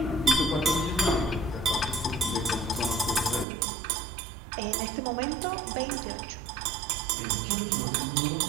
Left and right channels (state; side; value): drops out; left; at 3.5 s